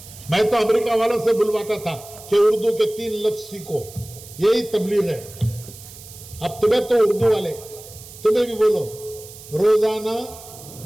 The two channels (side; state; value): right; noise; hiss, 17 dB below the sound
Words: میں تو امریکہ والوں سے بلواتا تھا کہ اردو کے 3 لفظ سیکھو، یہی تبلیغ ہے. اب تمہیں تو اردو والے، تمہیں بھی بولو. روزانہ